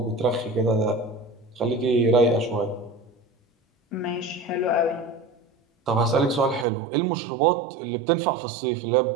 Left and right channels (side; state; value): left; drops out; at 6.7 s